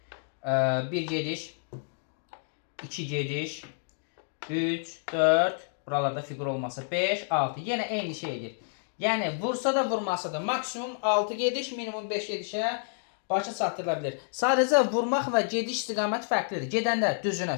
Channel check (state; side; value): silent; right; digital silence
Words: 1 gediş, 2 gediş, 3, 4, buralarda fiqur olmasa 5, 6. Yenə eyni şey edir. Yəni, vursa da vurmasa da maksimum 6 gediş, minimum 5 gedişə başa çatdırıla bilir. Sadəcə vurmaq və gediş istiqaməti fərqlidir. Gedəndə düzünə,